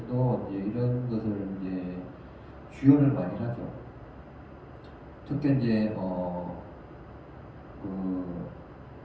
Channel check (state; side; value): identical; both; correlation 1.00